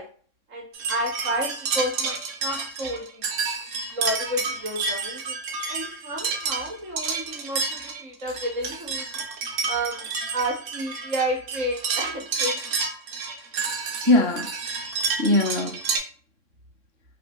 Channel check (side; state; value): left; late; 3.6 ms